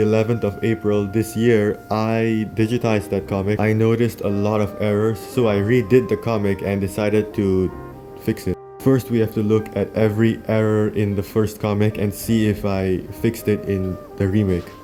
of April this year I digitized that comic. I noticed a lot of errors, so I redid the comic and decided to fix it. First, we have to look at every error in the first comic and see if I fixed it in the remake.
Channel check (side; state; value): both; identical; correlation 1.00